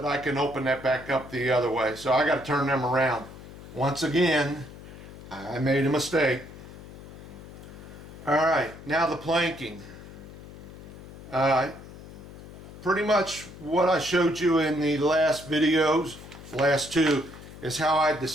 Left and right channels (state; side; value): noise; left; hum, 15 dB below the sound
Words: I can open that back up the other way. So I got to turn them around. Once again, I made a mistake. Alright, now the planking. Pretty much what I showed you in the last videos, last two, is how I